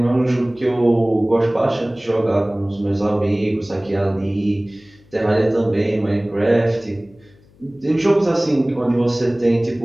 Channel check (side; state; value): left; noise; hum, 29 dB below the sound